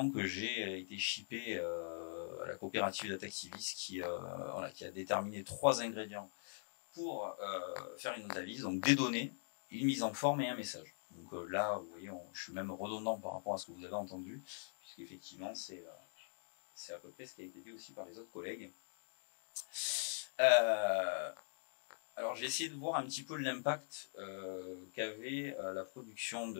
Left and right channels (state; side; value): silent; right; digital silence